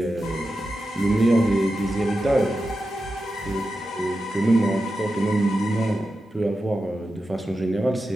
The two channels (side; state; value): both; normal; correlation 0.90